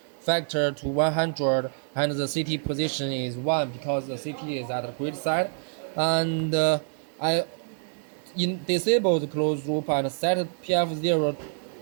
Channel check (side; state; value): left; silent; digital silence